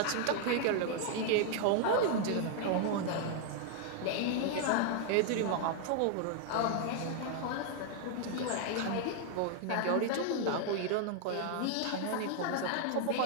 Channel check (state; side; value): different; both; correlation 0.00